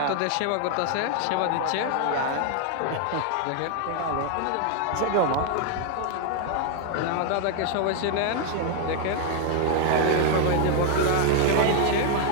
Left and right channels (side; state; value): both; different; correlation 0.00